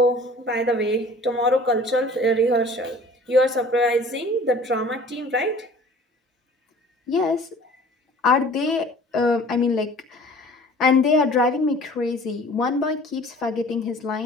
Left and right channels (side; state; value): both; normal; correlation 0.48